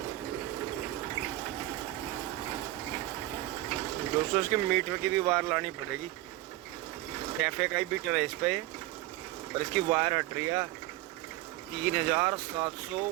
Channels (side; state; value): left; quieter; 16.7 dB